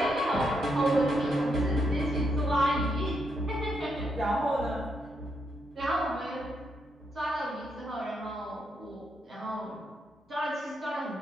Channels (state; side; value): normal; both; correlation 0.78